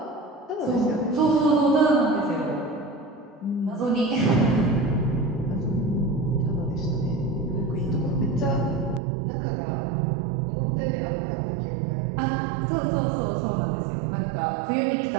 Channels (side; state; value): left; drops out; at 9.0 s